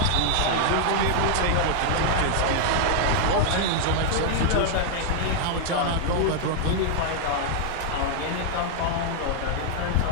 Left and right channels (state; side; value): different; both; correlation 0.00